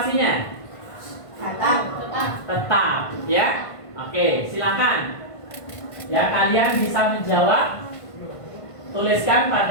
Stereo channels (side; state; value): right; late; 1.5 ms